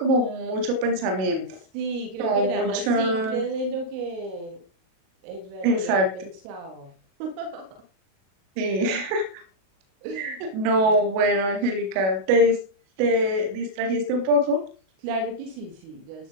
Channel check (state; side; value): late; left; 37 ms